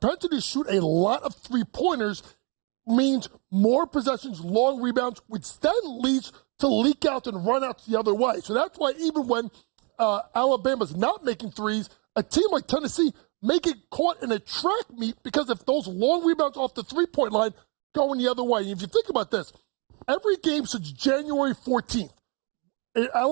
to shoot a lot of three-pointers means more possessions, long rebounds, which then leads to leak out and run outs the other way. So that's why even when Alabama's not making threes, a team like Tennessee may get caught in a track meet because if those long rebounds off the three-point line going the other way. And if you think about this, every game since January 14th, an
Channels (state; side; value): quieter; left; 33.9 dB